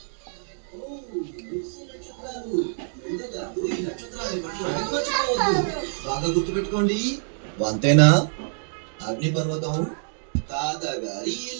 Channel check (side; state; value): left; silent; digital silence